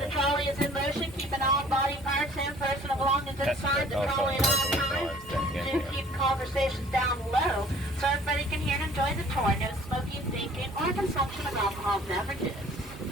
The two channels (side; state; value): both; normal; correlation 0.52